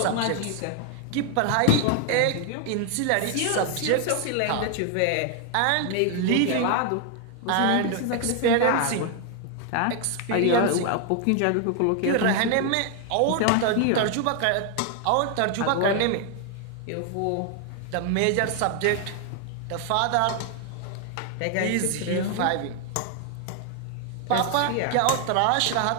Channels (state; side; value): different; both; correlation 0.00